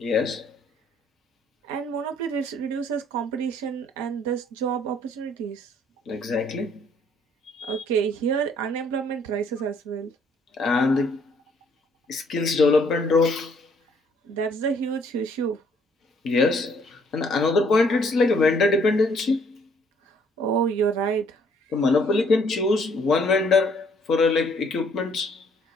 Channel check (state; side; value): normal; both; correlation 0.64